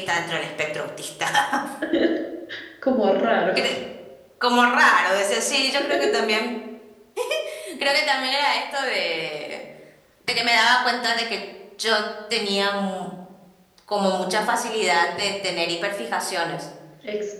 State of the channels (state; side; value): identical; both; correlation 1.00